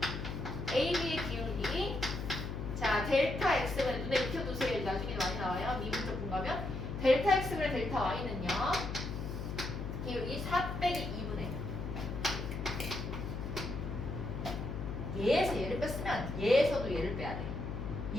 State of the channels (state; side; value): noise; left; hum, 5 dB below the sound